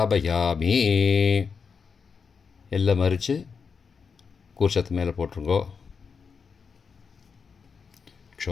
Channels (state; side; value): quieter; right; 5.7 dB